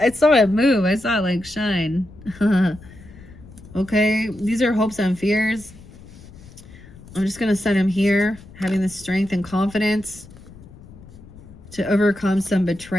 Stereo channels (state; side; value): noise; left; rumble, 20 dB below the sound